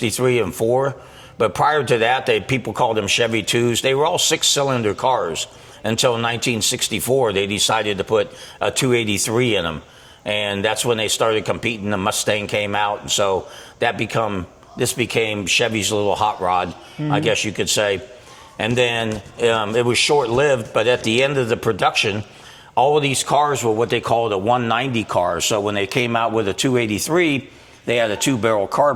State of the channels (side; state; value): both; identical; correlation 1.00